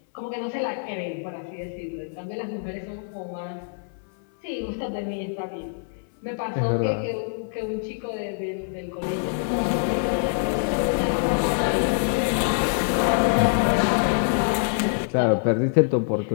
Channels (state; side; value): silent; right; 62 dB below the other